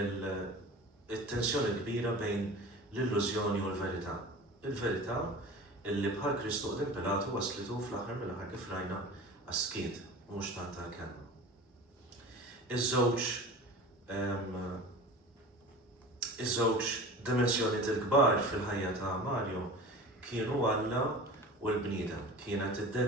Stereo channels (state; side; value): normal; both; correlation 0.37